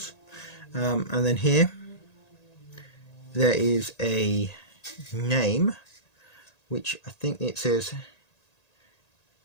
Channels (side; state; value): right; late; 1.8 ms